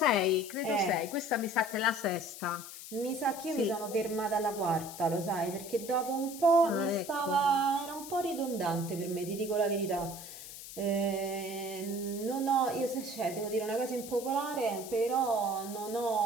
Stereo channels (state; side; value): noise; left; hiss, 12 dB below the sound